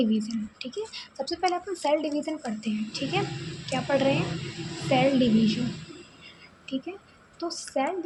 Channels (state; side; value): identical; both; correlation 1.00